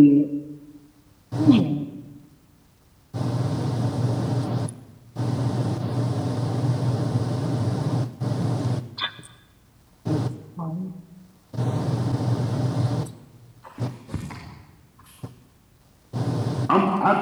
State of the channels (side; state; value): both; identical; correlation 1.00